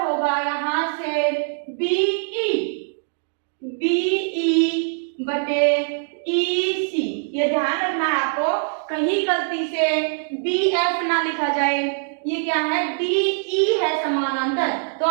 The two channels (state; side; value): silent; left; digital silence